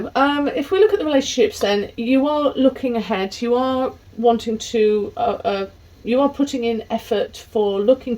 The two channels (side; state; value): both; identical; correlation 1.00